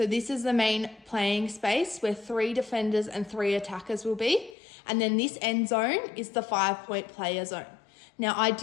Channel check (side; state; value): right; drops out; at 4.5 s